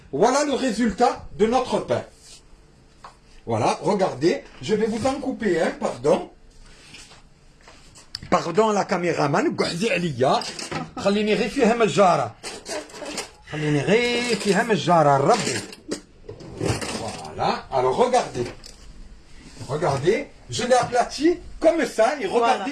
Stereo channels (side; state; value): both; identical; correlation 1.00